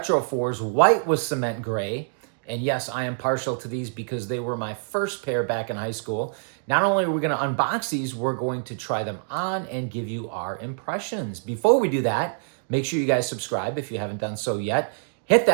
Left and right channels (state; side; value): silent; left; digital silence